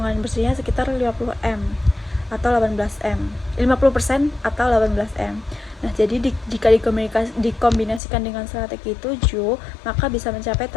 bersihnya sekitar 50M atau 18M, 50% atau 18M. Nah, jadi jika dikombinasikan dengan strategi 7, maka bisa mencapai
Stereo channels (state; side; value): drops out; right; at 8.0 s